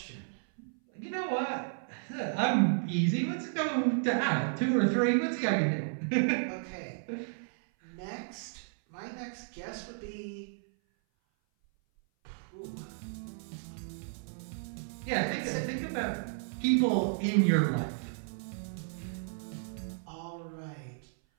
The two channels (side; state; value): left; silent; 56 dB below the other